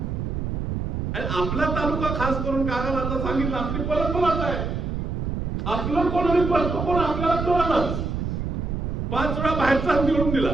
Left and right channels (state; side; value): noise; right; rumble, 2 dB below the sound